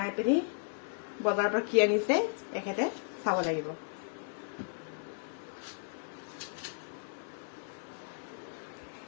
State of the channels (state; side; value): silent; right; 55 dB below the other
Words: পিনি বজাৰৰ পৰা কি আনিছে এখেতে চাব লাগিব